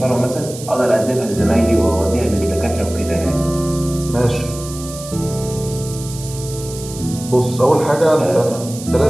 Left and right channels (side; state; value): right; noise; hiss, 13 dB below the sound